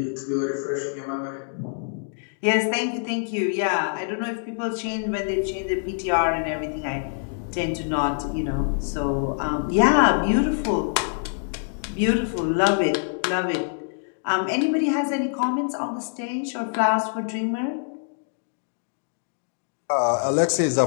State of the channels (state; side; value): silent; right; digital silence